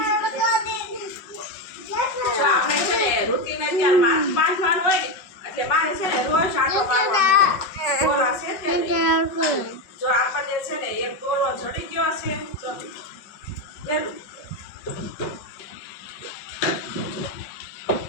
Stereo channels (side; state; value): right; late; 5.4 ms